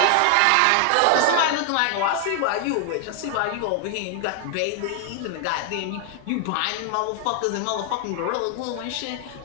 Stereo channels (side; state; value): both; different; correlation 0.00